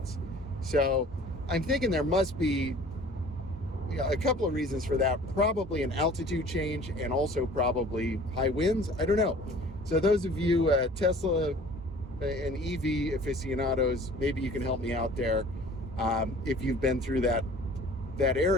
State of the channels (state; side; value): normal; both; correlation 0.48